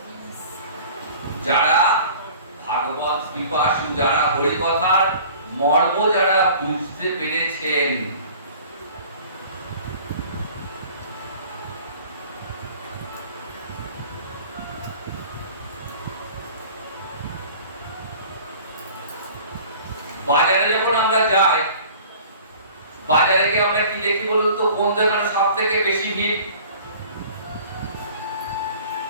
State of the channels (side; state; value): both; inverted; correlation -0.46